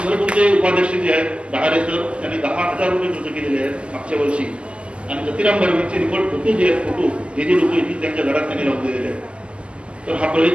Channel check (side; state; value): left; late; 0.053 ms